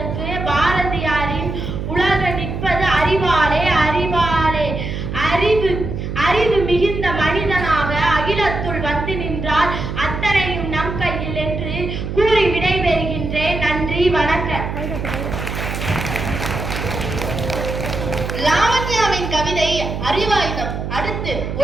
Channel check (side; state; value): right; noise; hum, 5 dB below the sound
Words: பாரதியாரின் உலக நிற்பது அறிவாலே அறிவாலே. அறிவு மிகுந்த மனிதனாக அகிலத்துள் வந்து நின்றால் அத்தனையும் நம் கையில் என்று கூறி விடைபெறுகின்றேன். நன்றி, வணக்கம். லாவண்யாவின் கவிதை அறிவாயுதம். அடுத்து